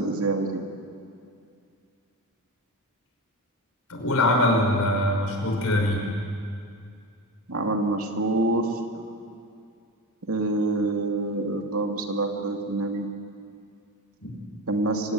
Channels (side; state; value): both; normal; correlation 0.25